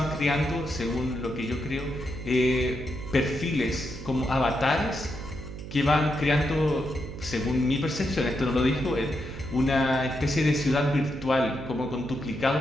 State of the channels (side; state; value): right; noise; hum, 11 dB below the sound